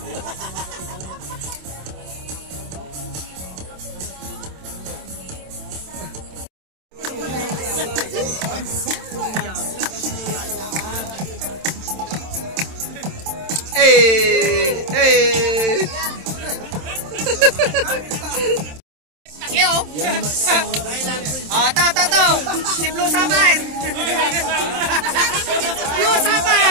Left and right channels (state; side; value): late; left; 27 ms